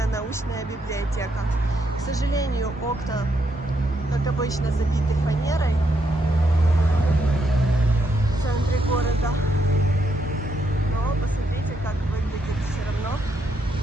научная библиотека. К сожалению, окна, как обычно, забиты фанерой в центре города. Но посмотрите, как выглядит все равно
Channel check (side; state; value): both; normal; correlation 0.78